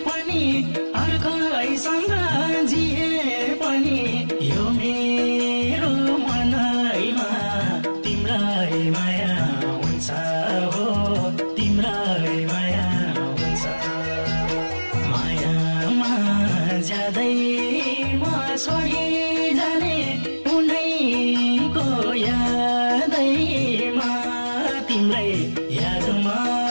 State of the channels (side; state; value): both; inverted; correlation -1.00